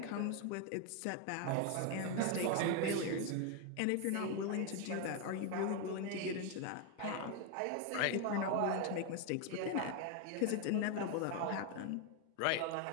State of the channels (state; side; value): different; both; correlation 0.01